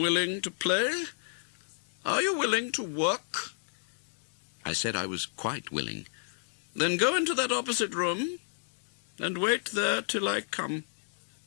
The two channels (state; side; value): silent; right; digital silence